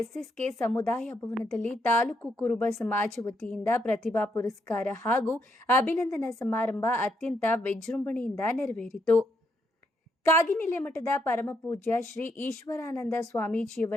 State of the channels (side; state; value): both; normal; correlation 0.76